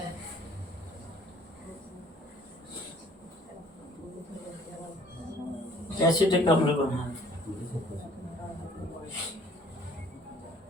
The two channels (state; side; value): normal; both; correlation 0.55